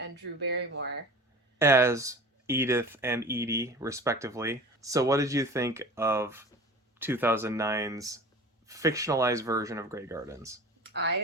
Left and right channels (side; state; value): both; normal; correlation 0.38